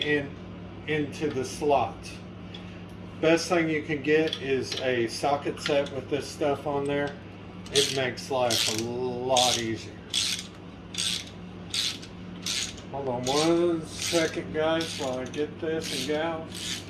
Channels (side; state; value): both; identical; correlation 1.00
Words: into the slot. Best thing you can get is a socket set with this stuff on there. It makes life a lot easier. Hold on one second, guys, while I get this and gals.